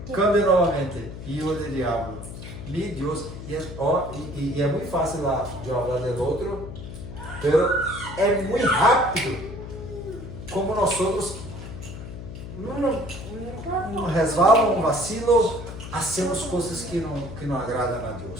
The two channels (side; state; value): left; noise; hum, 11 dB below the sound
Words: cambie novamente. Filho do diabo. Mi Deus. E é muito fácil lá de falar do outro, mas é muito rápido como nós outros um resvalo, um vacilo, hacemos coisas que não agradam a